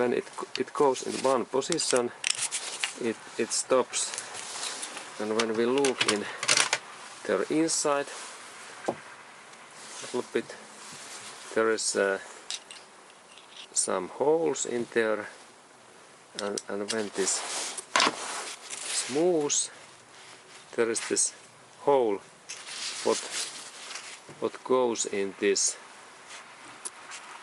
it goes in one position, it stops, and when we look in their inside a little bit, there is some holes in there, and when this moves, there is this hole what goes in this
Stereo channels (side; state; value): both; identical; correlation 1.00